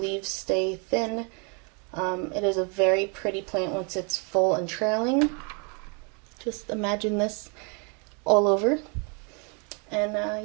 stay thin. It is a very pretty plant once it's full and trailing. Just imagine this all over. And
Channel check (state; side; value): quieter; left; 35.2 dB